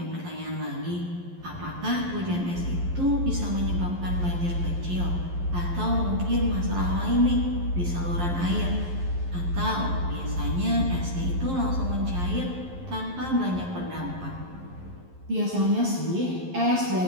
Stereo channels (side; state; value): left; late; 11 ms